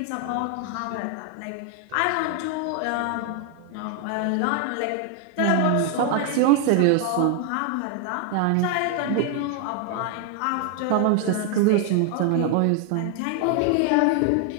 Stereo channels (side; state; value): both; different; correlation 0.00